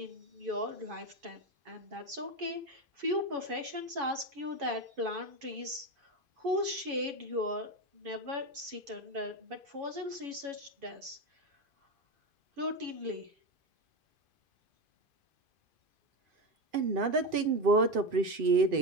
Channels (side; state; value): left; late; 2.5 ms